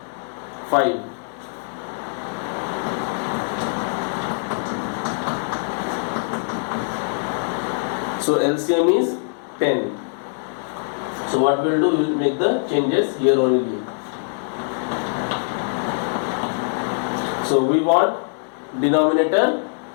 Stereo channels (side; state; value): right; silent; digital silence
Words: 5. So LCM is 10. So what we will do, we will make the changes here only. So we want denominator